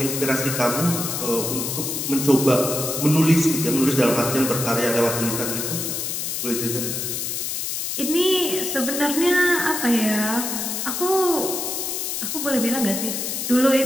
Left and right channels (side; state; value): left; noise; hiss, 3 dB below the sound